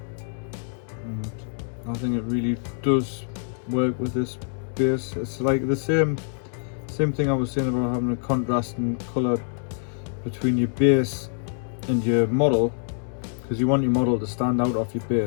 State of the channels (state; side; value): silent; right; digital silence